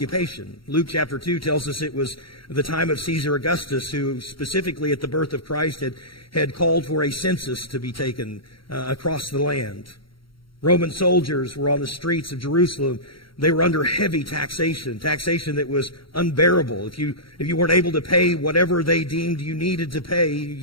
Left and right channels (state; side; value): late; right; 0.74 ms